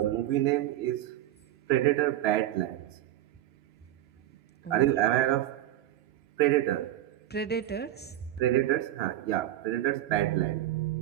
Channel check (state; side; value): quieter; left; 13.2 dB